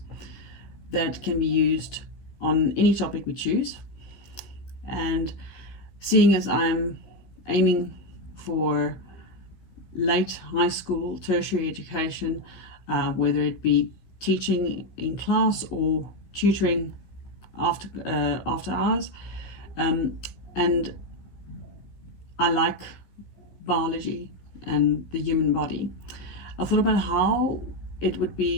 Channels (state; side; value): late; right; 15 ms